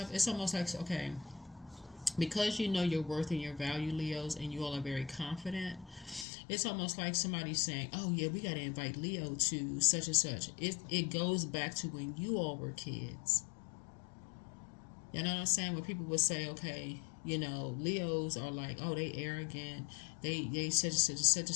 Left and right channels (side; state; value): right; drops out; at 6.2 s